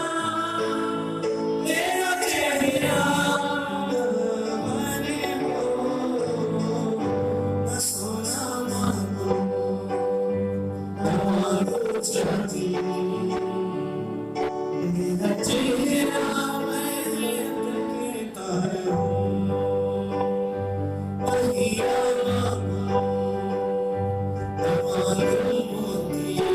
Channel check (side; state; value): both; identical; correlation 1.00